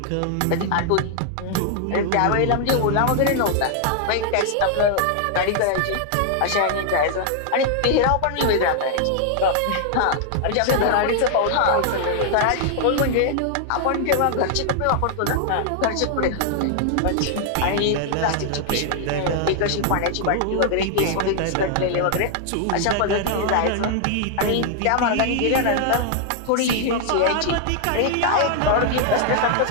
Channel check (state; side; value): different; both; correlation 0.00